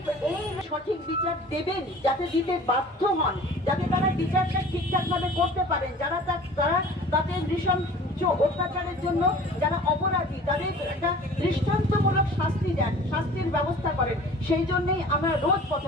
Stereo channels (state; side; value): normal; both; correlation 0.44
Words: সঠিক বিচার দেবেন, যাতে দিতে বাধ্য হন, যাতে তারা বিচারটা ঠিকঠাকভাবে করতে পারেন, যারা তাদের নৃশংস অত্যাচারের জন্য যারা অপরাধী তাদের একটা দৃষ্টান্তমূলক শাস্তি দেন, শাস্তির ব্যবস্থা করেন। সেই জন্যই আমরা রোজ